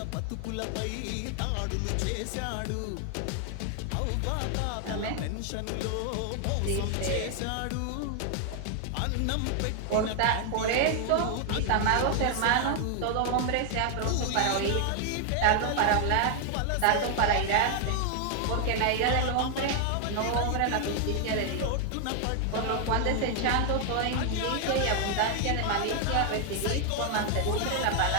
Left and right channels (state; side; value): different; both; correlation 0.00